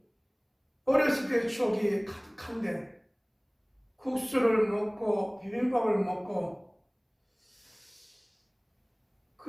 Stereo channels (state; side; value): identical; both; correlation 1.00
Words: 어렸을 때의 추억이 가득한데, 국수를 먹고 비빔밥을 먹고,